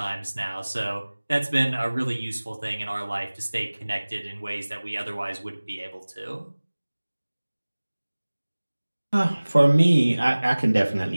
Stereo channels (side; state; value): both; inverted; correlation -1.00